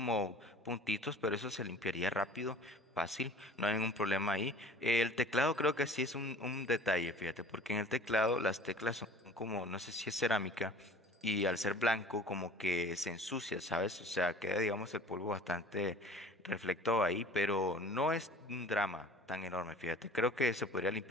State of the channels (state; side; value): normal; both; correlation 0.45